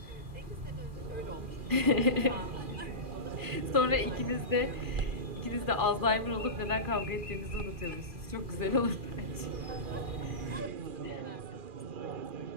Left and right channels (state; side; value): late; left; 2.4 ms